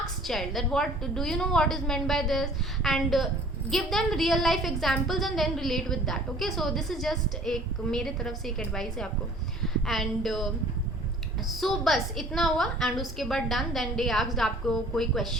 child that what do you know what is meant by this, and give them real life examples and then relate with that. Okay, so this is just एक मेरे तरफ से एक advice है आपको। And so बस इतना हुआ एंड उसके बाद डन। देन दे आस्क्ड आपको कोई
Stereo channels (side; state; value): both; normal; correlation 0.51